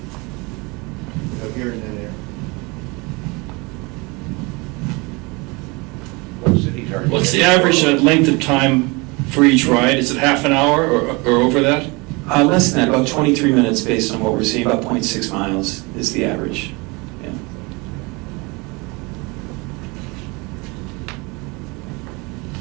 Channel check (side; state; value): left; quieter; 26.9 dB